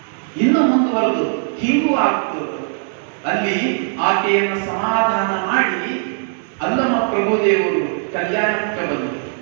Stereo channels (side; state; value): left; silent; digital silence